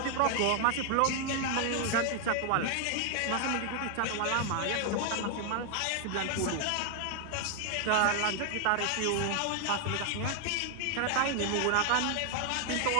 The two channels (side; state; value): both; different; correlation 0.00